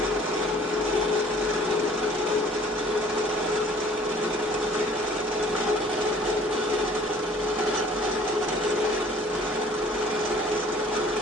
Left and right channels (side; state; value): both; normal; correlation 0.53